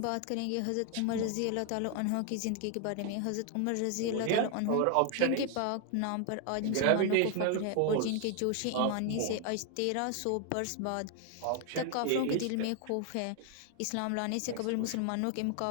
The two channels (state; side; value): different; both; correlation 0.00